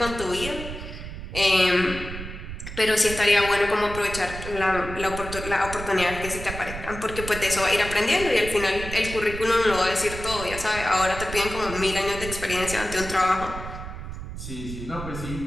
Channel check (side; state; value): right; noise; rumble, 9 dB below the sound